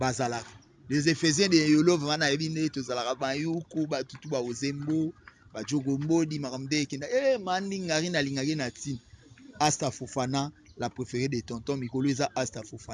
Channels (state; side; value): identical; both; correlation 1.00